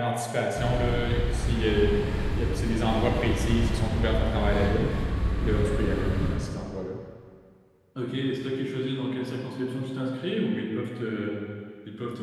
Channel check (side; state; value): both; identical; correlation 1.00